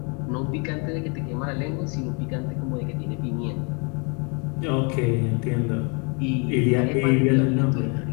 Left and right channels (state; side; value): quieter; right; 34.7 dB